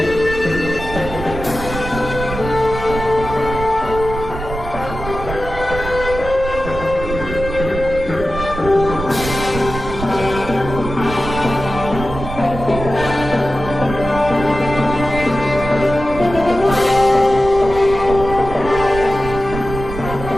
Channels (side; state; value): right; noise; rumble, 8 dB below the sound